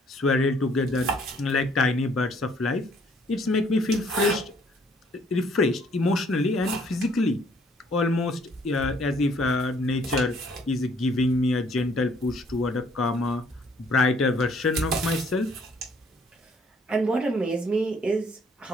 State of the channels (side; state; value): both; normal; correlation 0.63